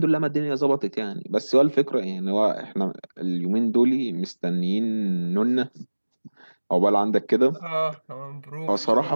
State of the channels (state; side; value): inverted; both; correlation -1.00